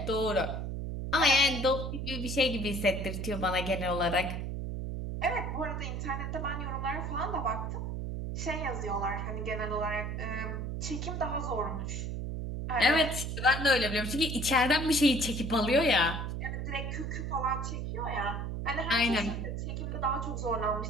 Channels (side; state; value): right; noise; hum, 3 dB below the sound